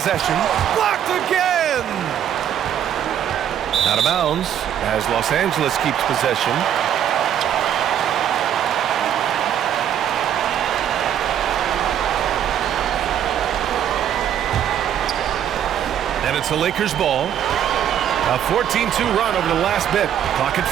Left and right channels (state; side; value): quieter; left; 9.9 dB